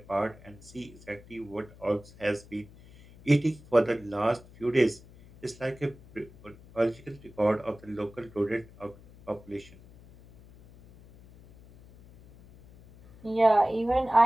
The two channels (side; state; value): left; noise; hum, 22 dB below the sound